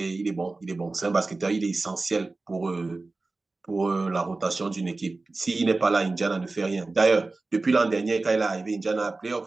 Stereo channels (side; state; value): left; quieter; 3.4 dB